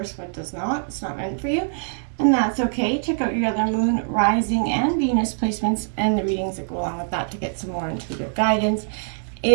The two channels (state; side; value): silent; left; digital silence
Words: what does not. It's not meant for you, and that's okay. Check out your other Moon, Rising, and Venus placements and the readings that go along with that to get some more intuitive guidance